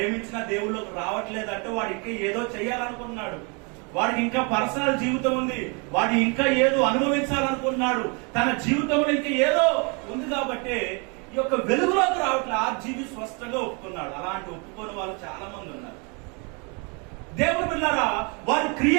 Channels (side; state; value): left; quieter; 32.9 dB